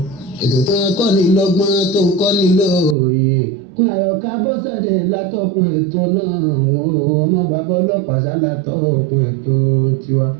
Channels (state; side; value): drops out; left; at 3.0 s